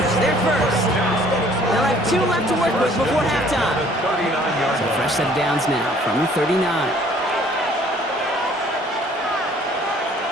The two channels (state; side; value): normal; both; correlation 0.57